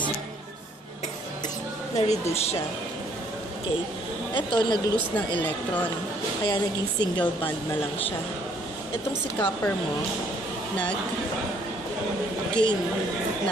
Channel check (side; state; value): both; normal; correlation 0.64